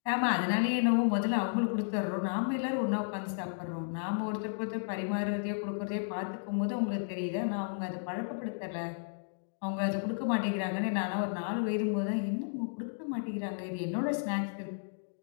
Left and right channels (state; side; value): silent; right; digital silence